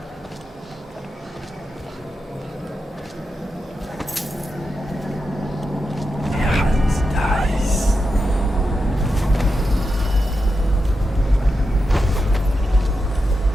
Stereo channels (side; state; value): both; normal; correlation 0.88